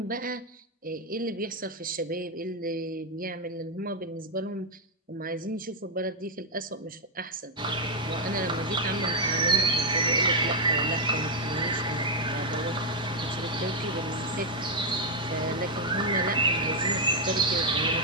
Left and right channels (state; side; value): normal; both; correlation 0.01